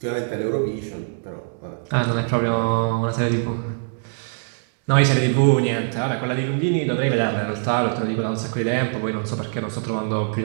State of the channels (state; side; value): silent; left; 64 dB below the other